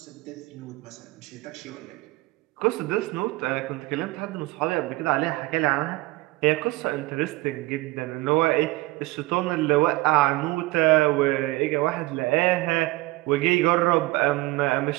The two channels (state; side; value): quieter; left; 20.1 dB